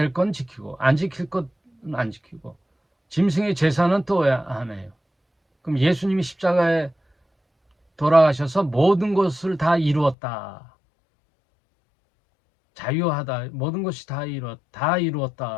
건 지키고 안 지킬 건 안 지키고 짐승의 제사는 또 왜 안 해요? 그럼 예수님이 십자가에 돌아가셔서 모든 것을 다 이루었다. 자유하다. 모든 것이 다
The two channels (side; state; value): right; drops out; at 10.2 s